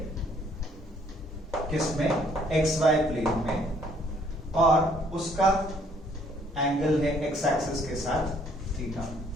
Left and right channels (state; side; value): normal; both; correlation 0.63